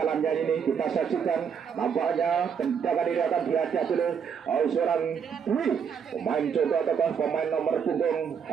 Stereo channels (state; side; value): quieter; left; 7.0 dB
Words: ini kita saksikan, nampaknya tendangan ini akan dihadapi oleh seorang Dwi, pemain Conto ataukah pemain nomor punggung